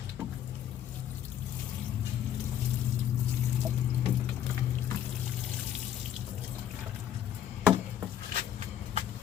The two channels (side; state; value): right; quieter; 10.2 dB